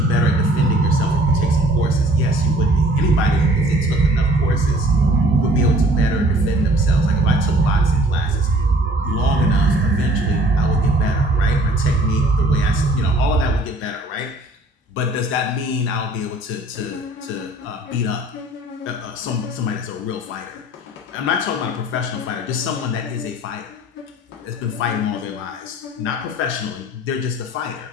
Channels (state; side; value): normal; both; correlation 0.53